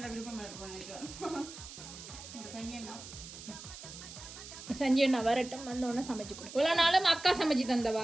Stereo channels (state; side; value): noise; right; hiss, 13 dB below the sound